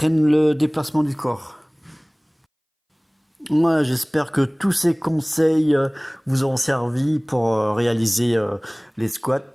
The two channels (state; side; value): identical; both; correlation 1.00